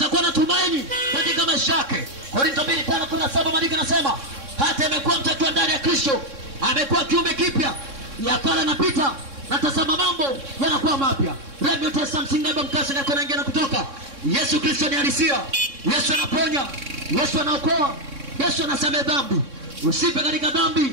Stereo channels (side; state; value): left; late; 3.6 ms